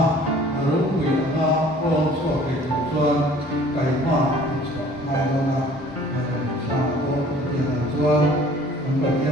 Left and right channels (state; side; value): normal; both; correlation 0.52